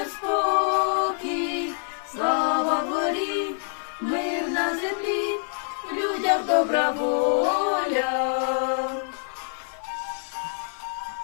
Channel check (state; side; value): silent; right; 59 dB below the other